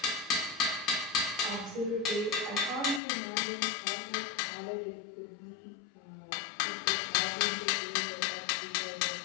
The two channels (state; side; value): drops out; right; at 3.0 s